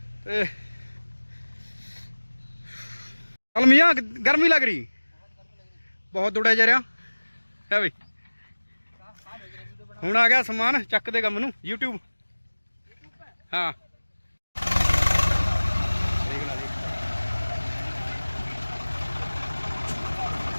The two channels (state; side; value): inverted; both; correlation -1.00